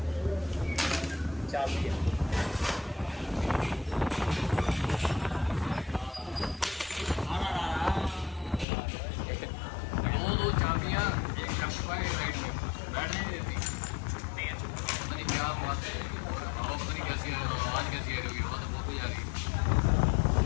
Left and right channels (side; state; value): right; drops out; at 8.7 s